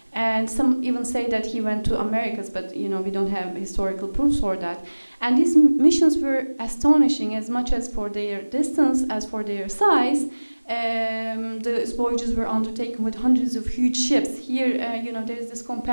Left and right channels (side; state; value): both; inverted; correlation -1.00